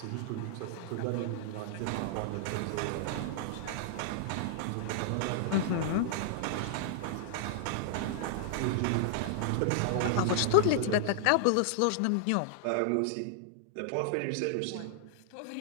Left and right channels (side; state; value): both; different; correlation -0.01